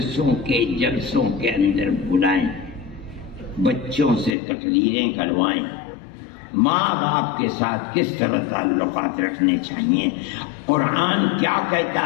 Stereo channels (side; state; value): right; drops out; at 4.3 s